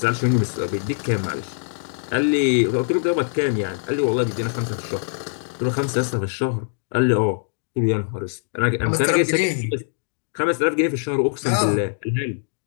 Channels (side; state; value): right; silent; digital silence